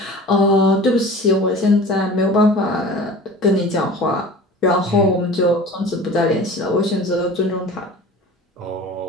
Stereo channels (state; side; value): normal; both; correlation 0.40